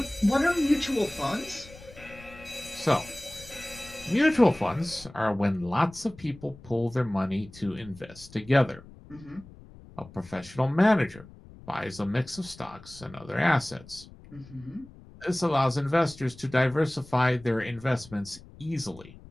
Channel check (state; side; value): noise; left; rumble, 20 dB below the sound